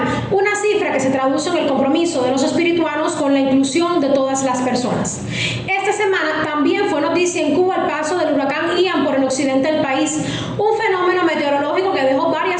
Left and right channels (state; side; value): identical; both; correlation 1.00